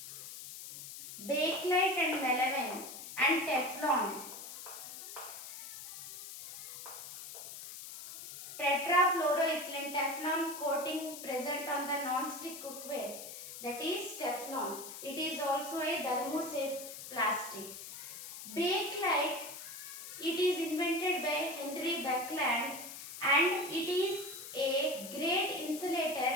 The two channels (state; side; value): noise; left; hiss, 11 dB below the sound